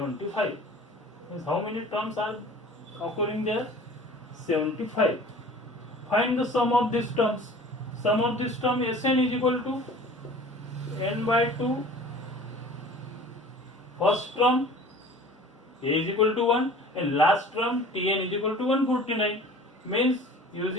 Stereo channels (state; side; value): normal; both; correlation 0.44